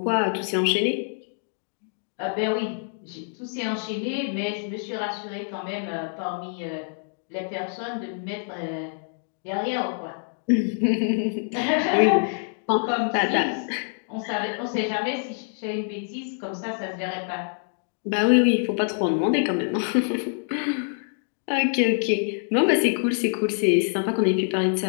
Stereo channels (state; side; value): silent; right; 61 dB below the other